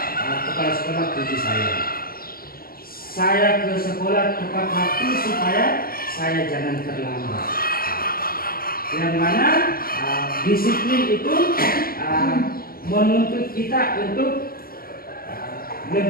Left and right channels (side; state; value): right; late; 0.43 ms